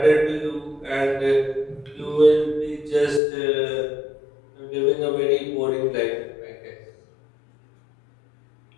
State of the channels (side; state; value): right; drops out; at 3.2 s